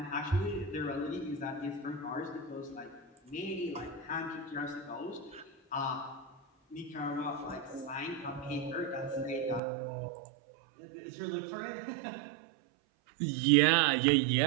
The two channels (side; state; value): left; drops out; at 9.6 s